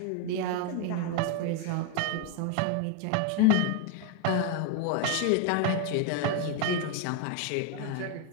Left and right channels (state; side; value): different; both; correlation 0.01